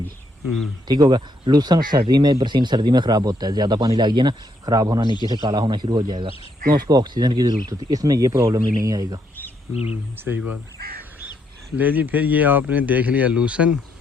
ठीक होगा। लूसन सर्दी में, बरसीन सर्दी में ख़राब होता है, ज़्यादा पानी लग गया ना ख़राब होना, नीचे से काला होना शुरू हो जाएगा, क्यों उसको ऑक्सीजन की ज़रूरत होती है। इसमें ये प्रॉब्लम ही नहीं आएगा। सही बात है। ले जी, फिर ये आपने देख लिया लूसन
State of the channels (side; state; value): both; normal; correlation 0.75